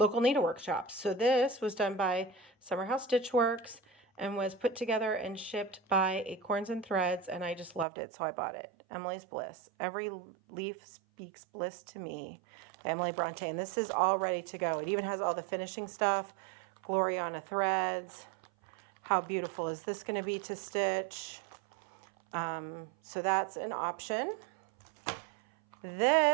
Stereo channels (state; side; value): drops out; left; at 7.9 s